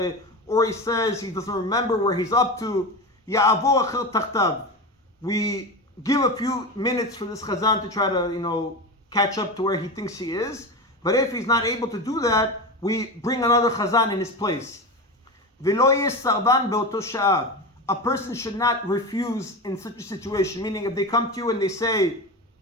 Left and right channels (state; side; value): normal; both; correlation 0.23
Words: or he says he doesn't remember where he's up to. Ya'avor achel tachtav. We give a few minutes for this chazan to try to, catch up to where he thinks he is. But if he's not able to do that, we bring another chazan in his place. V'lo yeh sarban be'oto sha'a. A person should not refuse in such a situation. Meaning, if they come to you and they say,